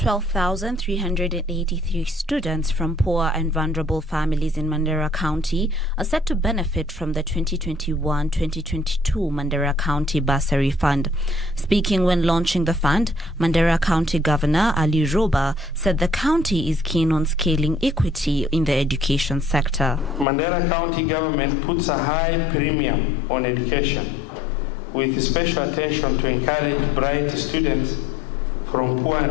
students from poor and vulnerable families in Mandera County are set to benefit from the 2021-2022 Mandera County Bursary Fund. Speaking when launching the fund, Mandera County Governor Ali Roba said the county is keen on scaling equity in the education sector. Mandera County government puts a high premium on education, with special attention to encourage bright students from poor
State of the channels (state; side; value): drops out; right; at 20.2 s